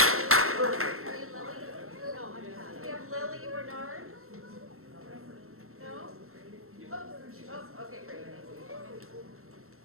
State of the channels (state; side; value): late; left; 0.62 ms